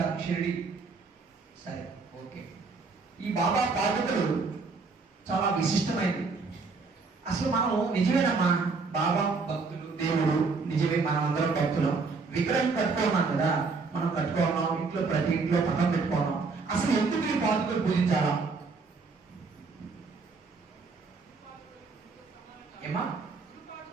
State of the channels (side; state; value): left; quieter; 4.4 dB